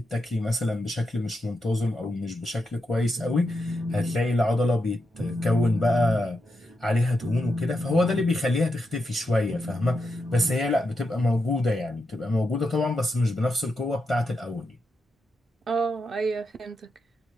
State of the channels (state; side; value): normal; both; correlation 0.85